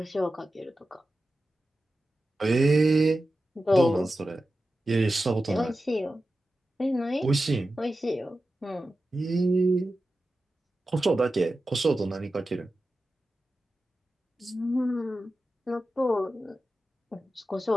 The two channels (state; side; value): normal; both; correlation 0.93